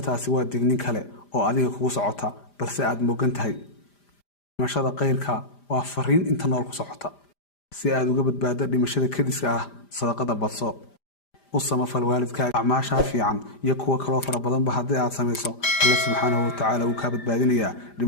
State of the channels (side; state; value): right; late; 5.0 ms